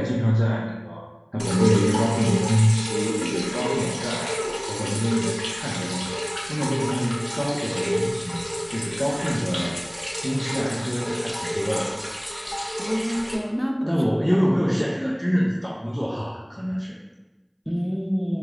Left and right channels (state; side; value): identical; both; correlation 1.00